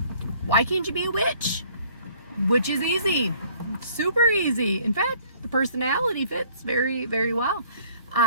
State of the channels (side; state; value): both; inverted; correlation -0.57